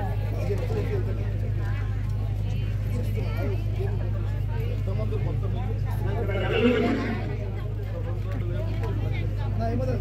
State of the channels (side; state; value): both; identical; correlation 1.00